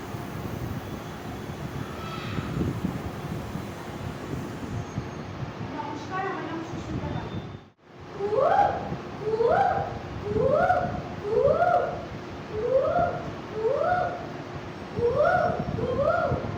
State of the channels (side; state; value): both; identical; correlation 1.00